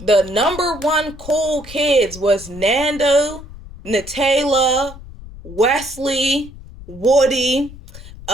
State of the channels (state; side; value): noise; left; rumble, 16 dB below the sound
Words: The number one cool kids was Nando, Nutella, Wesley, Woody.